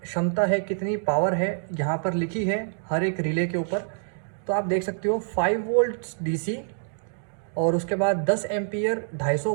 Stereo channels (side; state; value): left; silent; digital silence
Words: क्षमता है, कितनी पावर है, यहाँ पर लिखी है हर एक रिले के ऊपर। तो आप देख सकते हो 5 वोल्ट डीसी और उसके बाद 10 एम्पियर